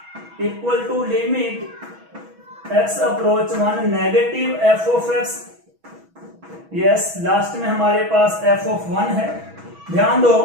equal to limit x approach 1 negative f of x, yes last में हमारे पास f ऑफ 1 है। ध्यान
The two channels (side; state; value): left; late; 6.2 ms